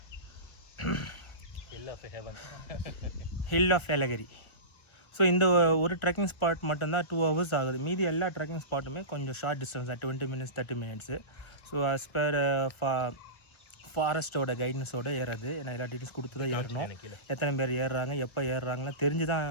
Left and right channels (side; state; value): right; late; 1.3 ms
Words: hill of Yelagiri. So இந்த ஒரு ட்ரெக்கிங் ஸ்பாட் மட்டும்தான் 2 hours ஆகுது. மீதி எல்லா ட்ரெக்கிங் ஸ்பாட்டுமே கொஞ்சம் short distance, 20 minutes 30 minutes. So as per ஃபாரஸ்ட்டோட கைடன்ஸோட ஏறது. ஏன்னா எல்லா டீட்டெயில்ஸ் கொடுத்து தான் ஏறணும். எத்தனை பேர் ஏறுறாங்க, எப்போ ஏறுறாங்கலாம் தெரிஞ்சு தான்